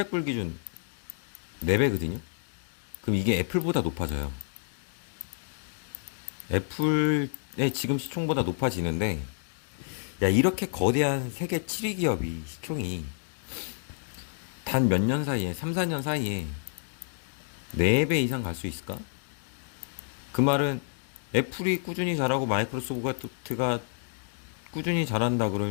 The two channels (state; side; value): silent; right; digital silence